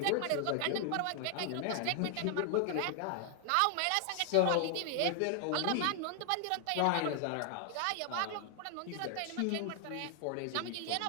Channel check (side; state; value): both; different; correlation 0.00